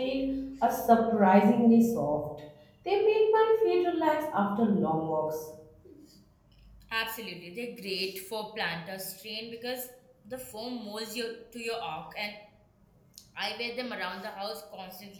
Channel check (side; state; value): both; identical; correlation 1.00